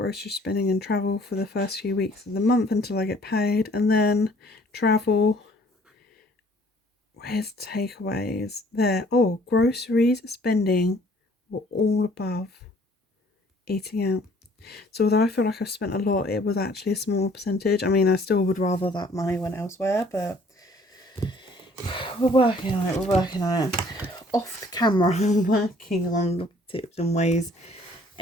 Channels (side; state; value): both; normal; correlation 0.57